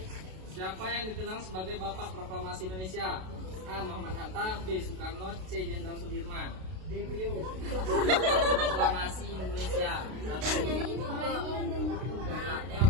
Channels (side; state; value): left; late; 32 ms